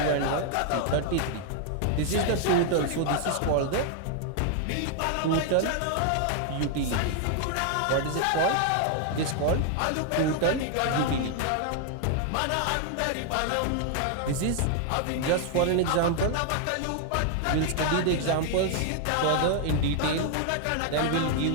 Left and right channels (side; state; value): both; different; correlation 0.00